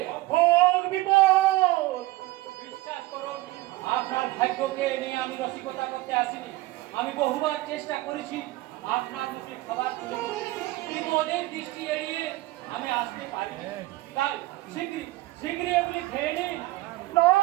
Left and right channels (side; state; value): left; quieter; 18.8 dB